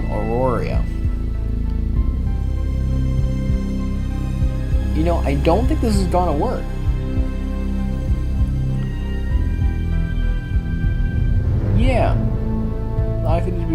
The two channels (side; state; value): both; identical; correlation 1.00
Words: Aurora. You know, I don't think this is gonna work. Yeah, likely to